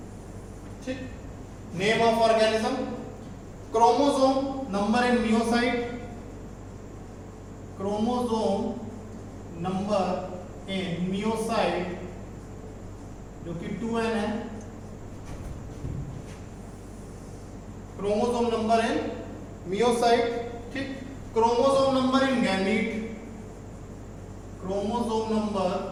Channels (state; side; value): identical; both; correlation 1.00